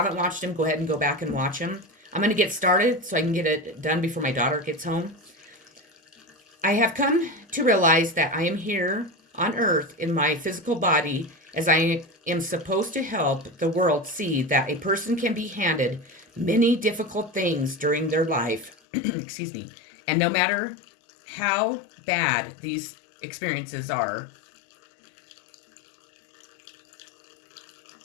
watched them, go ahead and go back and watch them. I'm going to get started so I can get it done before my daughter gets home. I have come to realize that I am here on earth in my physical body as I am supposed to help the world see that a person can be handed many difficult things during their life, excuse me, and no matter how bad these experiences are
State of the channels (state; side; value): drops out; right; at 18.8 s